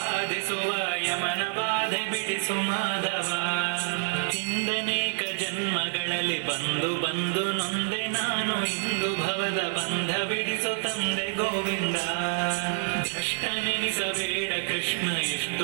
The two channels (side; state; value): left; silent; 60 dB below the other